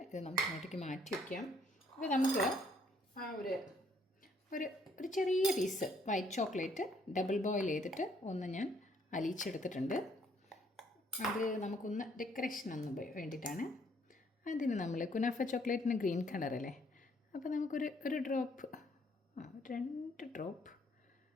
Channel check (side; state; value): both; normal; correlation 0.66